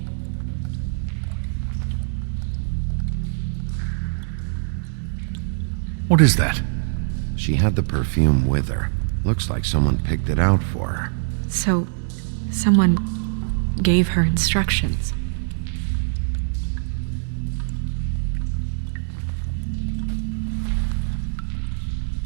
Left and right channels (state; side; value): silent; left; 63 dB below the other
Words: What is that? She had the perfume with her. Looks like someone picked it out for her. So, someone gave her instructions.